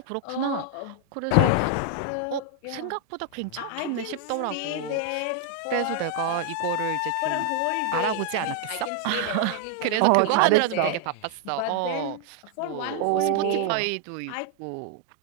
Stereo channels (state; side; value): different; both; correlation 0.00